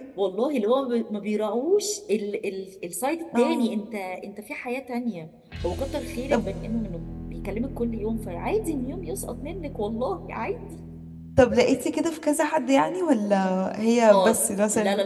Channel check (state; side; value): identical; both; correlation 1.00